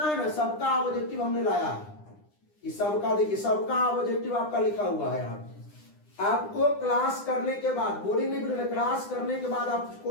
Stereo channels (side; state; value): right; late; 9.9 ms